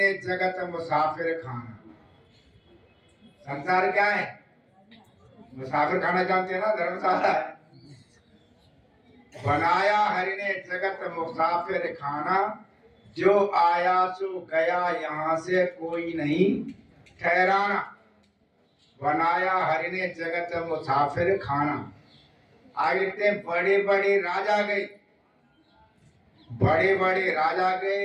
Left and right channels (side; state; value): both; identical; correlation 1.00